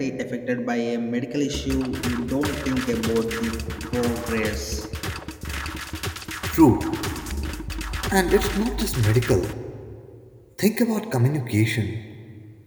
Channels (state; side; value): identical; both; correlation 1.00